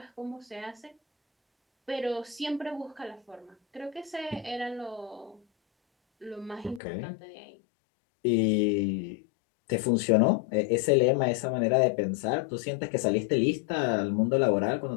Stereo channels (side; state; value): right; drops out; at 6.8 s